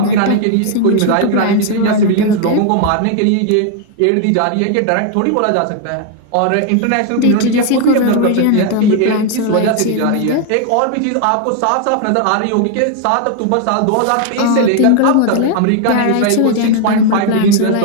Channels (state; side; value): different; both; correlation 0.00